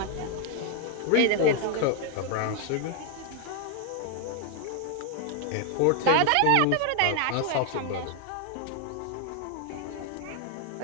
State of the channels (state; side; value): different; both; correlation 0.00